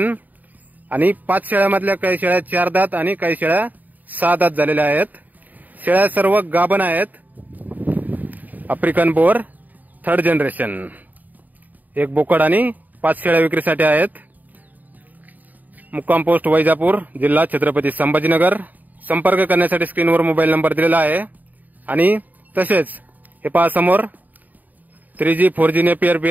आणि 5 शेळ्यामधल्या काही शेळ्या 4 दात आणि काही शेळ्या 6 दात झालेल्या आहेत। शेळ्या सर्व गाभण आहेत। आफ्रिकन बोअर थर्ड जनरेशन 1 बोकड आणि 5 शेळ्या विक्रीसाठी आहेत। मुक्काम पोस्ट वैजापूर, जिल्हा छत्रपती संभाजीनगर। संपर्क करण्यासाठी स्क्रीनवर मोबाईल नंबर दिलेला आहे। आणि तसेच हे पहा समोर 3G 4G नेपियर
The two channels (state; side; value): late; left; 0.082 ms